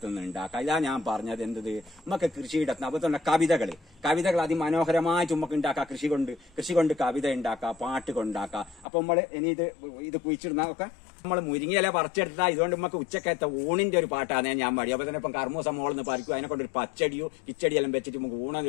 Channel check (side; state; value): right; drops out; at 8.8 s